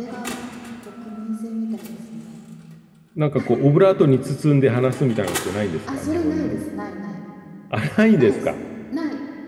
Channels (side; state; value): both; identical; correlation 1.00